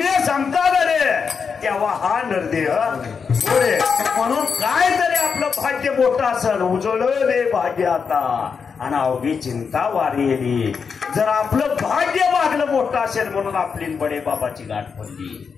सांगतात रे तेव्हा हा नरदेह पुढे. म्हणून काय तरी आपलं भाग्य मोठं असेल, उजळले भाग्य आता आणि अवघी चिंता वारी. जर आपलं भाग्य मागलं मोठं असेल म्हणून आपली बडे बाबाची गाठ पडली.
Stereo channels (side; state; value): right; quieter; 5.9 dB